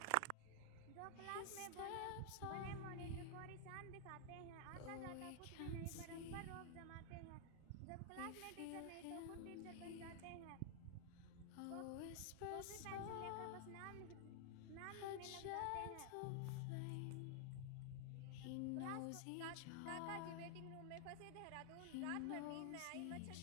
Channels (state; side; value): different; both; correlation 0.00